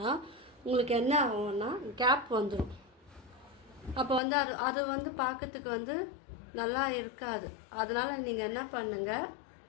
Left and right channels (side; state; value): right; drops out; at 4.2 s